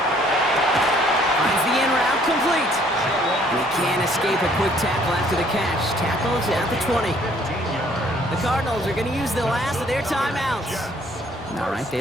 Finds the in route complete. And he can't escape a quick tackle after the catch. Tackles at the 20. The Cardinals are going to use the last of their timeouts. All right, they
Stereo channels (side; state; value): both; normal; correlation 0.61